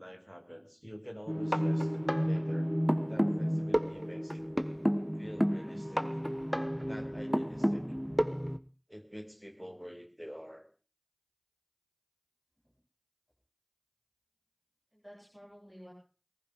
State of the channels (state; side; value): identical; both; correlation 1.00